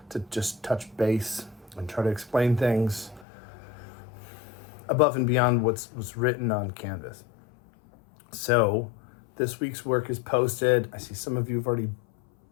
to just touch base and try to explain things above and beyond what's written on Canvas. So this week's work is posted. I see some of you have already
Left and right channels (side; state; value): right; drops out; at 3.2 s